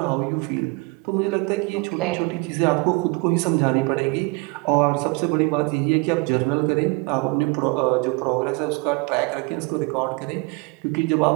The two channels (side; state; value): left; quieter; 28.1 dB